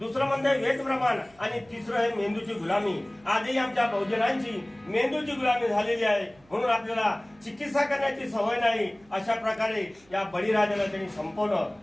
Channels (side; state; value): right; noise; hum, 30 dB below the sound